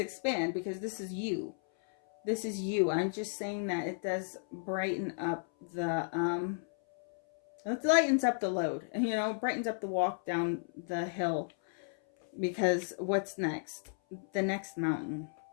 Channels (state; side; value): silent; right; 55 dB below the other